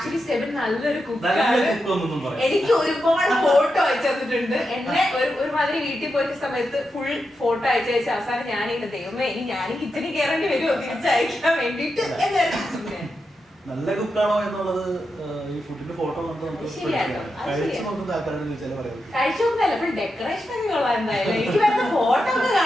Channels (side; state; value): both; normal; correlation 0.87